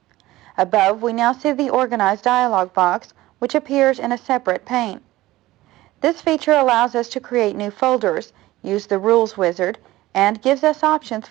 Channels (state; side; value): quieter; left; 17.2 dB